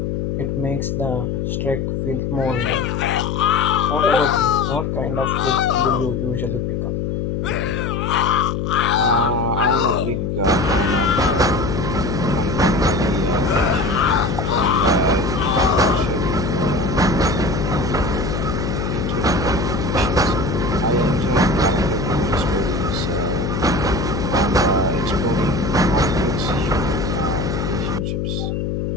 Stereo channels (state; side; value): noise; left; hum, 1 dB below the sound